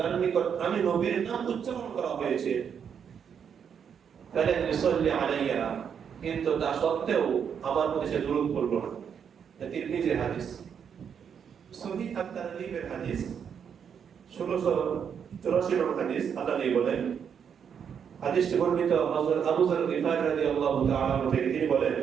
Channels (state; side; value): quieter; left; 7.5 dB